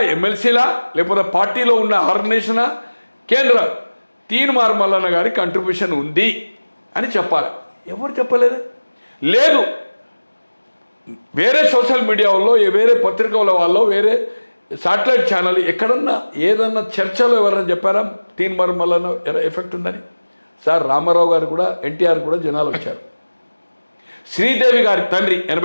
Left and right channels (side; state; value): both; inverted; correlation -1.00